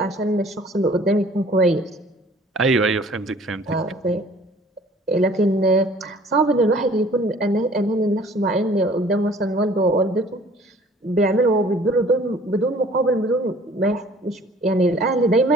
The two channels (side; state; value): both; normal; correlation 0.52